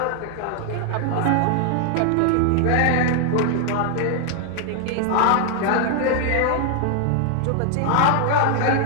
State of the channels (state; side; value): different; both; correlation 0.00